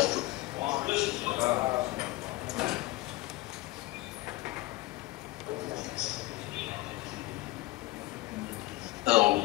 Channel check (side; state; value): right; quieter; 19.7 dB